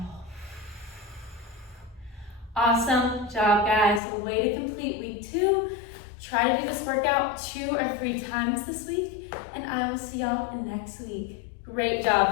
Awesome job, guys. A way to complete week 2. Try to do this workout 2 or 3 times this week, and I will see y'all next week. Great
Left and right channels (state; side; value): drops out; right; at 4.0 s